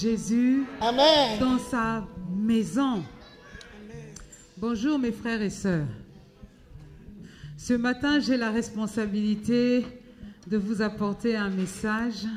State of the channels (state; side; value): identical; both; correlation 1.00